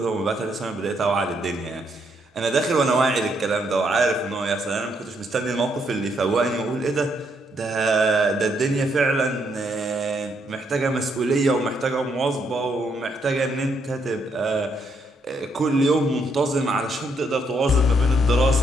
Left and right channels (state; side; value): normal; both; correlation 0.74